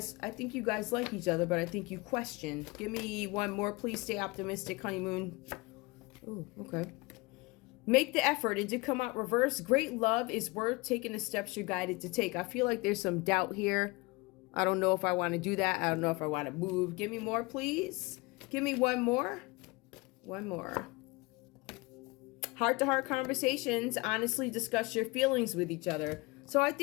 I think you guys like each other, but I think you question. Give me one more, please. Stay optimistic, honeymoon. Oh, okay. Make the effort. It did come out reverse. Great love is worth taking the steps you're guided to take. I feel like there's some doubt here. I don't know if I want to do that. I don't know if I want to move. Give me more, please. Give me one more. One more. Heart-to-heart conversations. Honestly discuss your feelings with each other. So I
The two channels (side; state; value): right; quieter; 24.8 dB